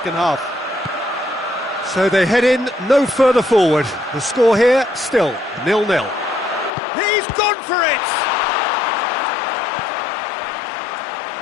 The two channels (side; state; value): right; drops out; at 6.7 s